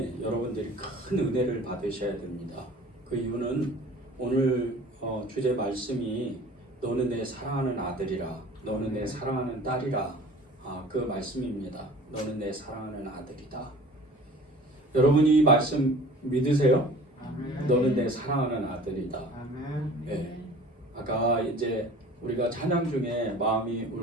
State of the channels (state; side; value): normal; both; correlation 0.46